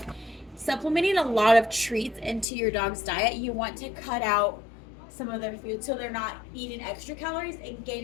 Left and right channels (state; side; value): drops out; right; at 2.5 s